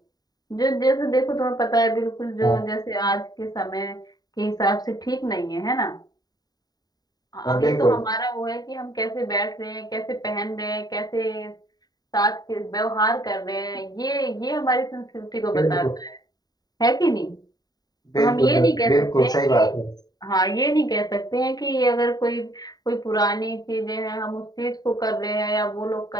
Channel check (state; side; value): late; right; 0.19 ms